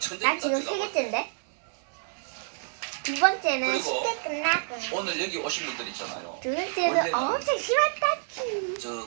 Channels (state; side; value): silent; left; digital silence